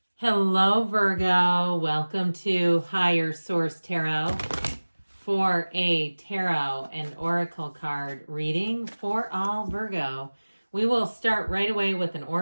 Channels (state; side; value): inverted; both; correlation -1.00